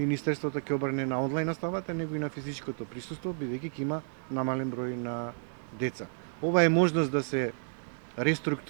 ќе обрне на онлайн наставата, него и на физичкото присуство, бидејќи ќе има намален број на деца. Ова е можност да се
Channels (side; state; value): left; silent; digital silence